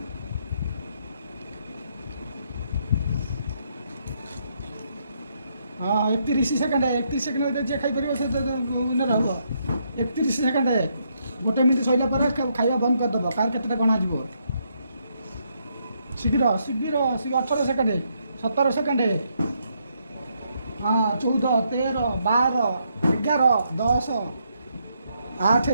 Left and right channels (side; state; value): both; inverted; correlation -0.76